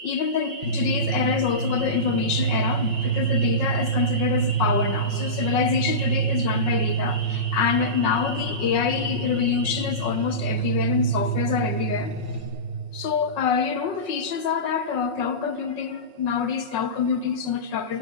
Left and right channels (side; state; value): right; late; 5.5 ms